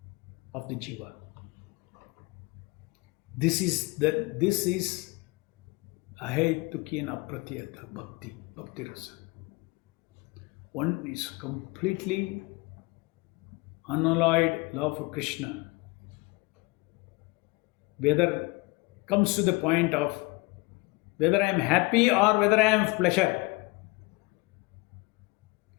of the jiva. This is ahetuki and apratyata bhakti rasa. One is completely unalloyed love for Krishna. Whether comes to the point of whether I am happy or whether I am pleasure,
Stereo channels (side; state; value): right; quieter; 24.9 dB